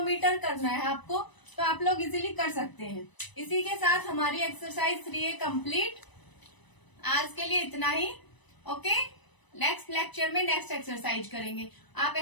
करना है आपको, तो आप लोग इजीली कर सकते हैं। इसी के साथ हमारी एक्सरसाइज 3A कंप्लीट। आज के लिए इतना ही। ओके, नेक्स्ट लेक्चर में नेक्स्ट एक्सरसाइज करेंगे। आप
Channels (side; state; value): right; late; 1.0 ms